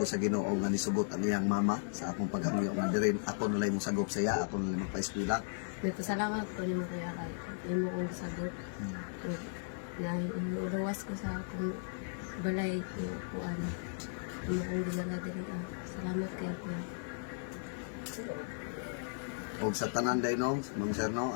sa Ginoo nga nisugot ang iyang mama sa akong paghangyo nga dirin ako nalay mo sagop sa iya, ako nalay magpa-eskwela. Nagpasalamat ko ni mo kuya kay imo kong sagot. Na iluwas ko sa akong balay ko kuan. Imo kong dinala diri. Salamat kay kuya. Og sa tanan day no, Ma'am Sir no,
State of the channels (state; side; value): silent; right; digital silence